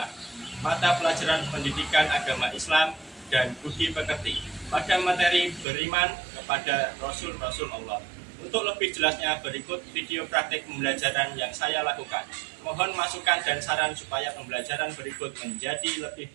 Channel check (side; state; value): left; drops out; at 5.7 s